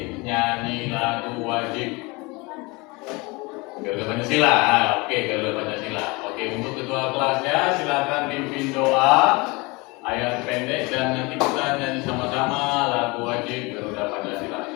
nyanyi lagu wajib Garuda Pancasila. Oke, Garuda Pancasila. Oke, untuk ketua kelasnya silakan pimpin doa ayat pendek dan nanti kita nyanyi sama-sama lagu wajib Garuda Pancasila.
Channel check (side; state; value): right; quieter; 25.8 dB